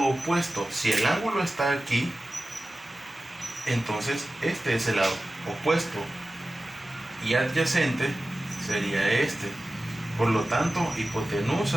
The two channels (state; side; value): normal; both; correlation 0.95